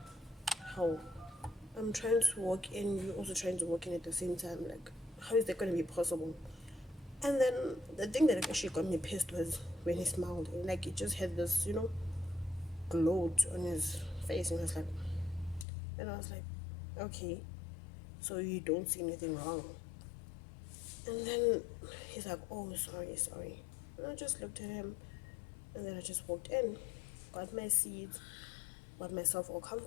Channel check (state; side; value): drops out; right; at 15.7 s